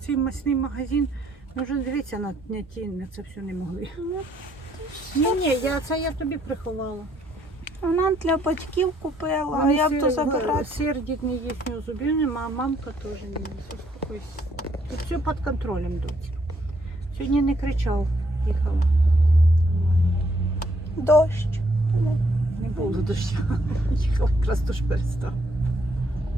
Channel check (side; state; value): both; normal; correlation 0.69